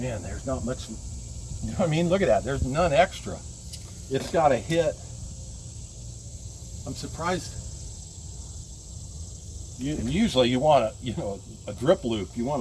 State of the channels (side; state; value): both; identical; correlation 1.00